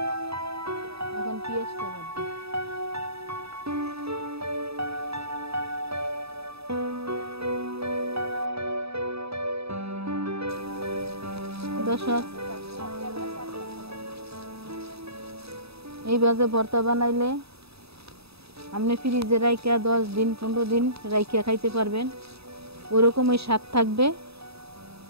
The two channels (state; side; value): late; left; 0.78 ms